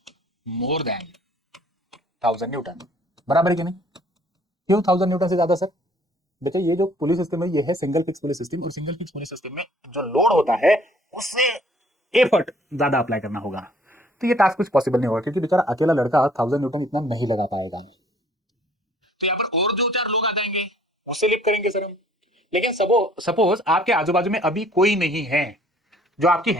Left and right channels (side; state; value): both; normal; correlation 0.58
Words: More than 1000 Newton. बराबर है कि नहीं? क्यों 1000 न्यूटन से ज्यादा सर? बच्चा ये जो पुलिस सिस्टम है ये है सिंगल फिक्स पुलिस सिस्टम, और सिंगल फिक्स पुलिस सिस्टम में जो लोड होता है उससे एफर्ट ज्यादा अप्लाई करना होगा। तो ये टास्क कुछ पॉसिबल नहीं होगा क्योंकि बेचारा अकेला लड़का 1000 न्यूटन इतना नहीं लगा पाएगा। तो यहाँ पर और दो चार लोग आ जाएंगे, उससे लिफ्ट करेंगे सर हम। लेकिन सपोज आपके आजू बाजू में अभी कोई नहीं है जो आपकी